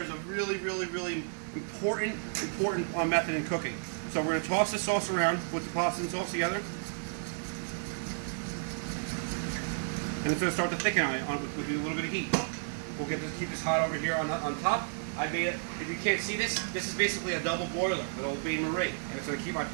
a really important method in cooking. So we're going to toss the sauce around, put the pasta and sauce together, and it's going to start to thicken with a little bit of heat. We'll keep this hot over here on top. I made it. If you can't see this, this is basically a double boiler with Old Bay Marie, and it's going to keep my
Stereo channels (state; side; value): silent; left; 56 dB below the other